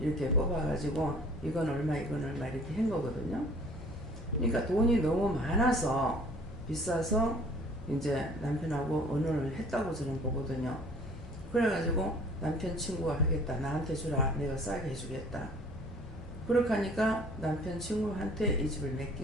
뽑아가지고 이건 얼마 이건 얼마 이렇게 한 거거든요. 그러니까 돈이 너무 많아서 비싸서 이제 남편하고 언혼을 했다고 저는 보거든요. 그래가지고 남편 친구가 하겠다. 나한테 주라. 내가 싸게 해주겠다. 그렇게 하니까 남편 친구한테 이 집을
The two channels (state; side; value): normal; both; correlation 0.52